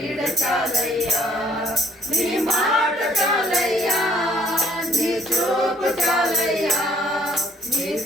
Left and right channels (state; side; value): normal; both; correlation 0.62